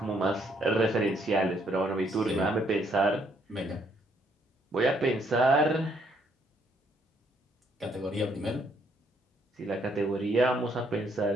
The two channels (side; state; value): both; normal; correlation 0.70